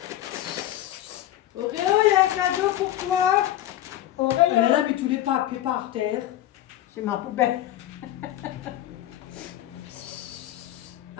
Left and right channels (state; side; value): quieter; right; 13.3 dB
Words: Oréo, il y a un cadeau pour toi. Auréa. Elle a mis tous les papiers par terre. C'est ma poubelle.